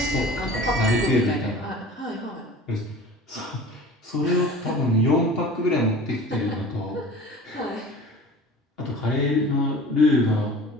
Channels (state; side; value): normal; both; correlation 0.41